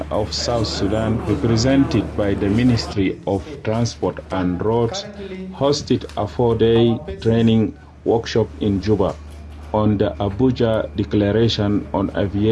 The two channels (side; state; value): both; identical; correlation 1.00